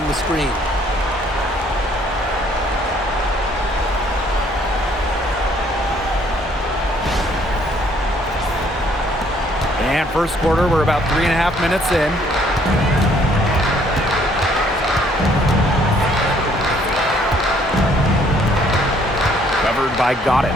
the screen. And first quarter, we're about 3.5 minutes in. Covered by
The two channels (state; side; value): normal; both; correlation 0.63